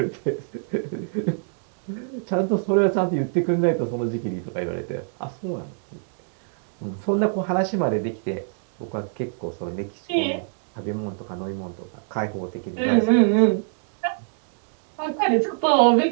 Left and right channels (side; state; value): left; silent; digital silence